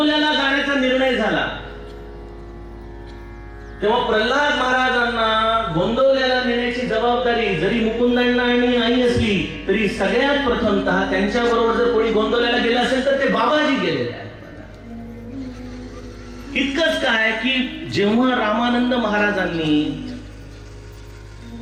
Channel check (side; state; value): both; identical; correlation 1.00